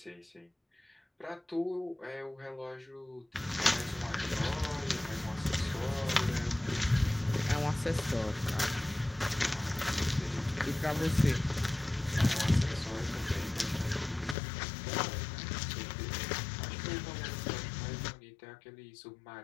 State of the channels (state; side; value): drops out; right; at 14.4 s